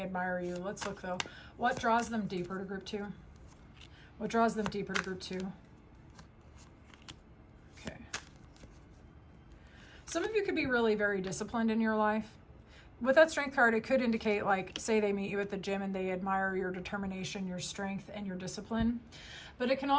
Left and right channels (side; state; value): both; identical; correlation 1.00